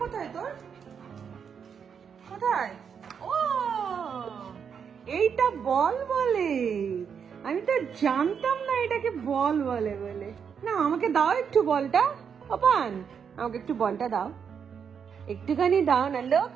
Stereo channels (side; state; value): left; quieter; 7.0 dB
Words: কোথায় তোর, কোথায়? ও এইটা বল বলে, আমি তো জানতাম না এটাকে বল বলে বলে। না আমাকে দাও একটু বলটা, পান আমাকে একটু বলটা দাও, একটুখানি দাও না,